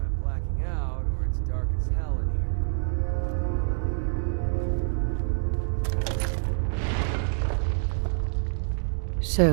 blacking out or it's dark as hell in here.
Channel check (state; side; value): silent; left; digital silence